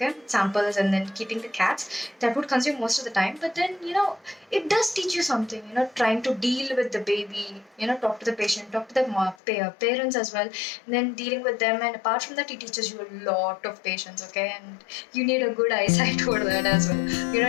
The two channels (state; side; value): drops out; right; at 9.3 s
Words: samples, and then keeping the cats. That would consume most of the time, but then it does teach you something, trying to deal with the baby, talk to the patient, talk to the parents as well, and then dealing with them. And apart from that, it teaches you a lot of patience, okay, and you need a good eyesight for that as well,